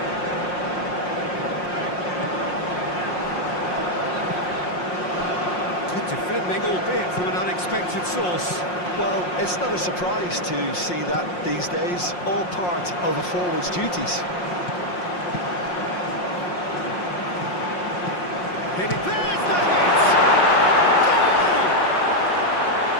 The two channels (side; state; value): right; late; 5.6 ms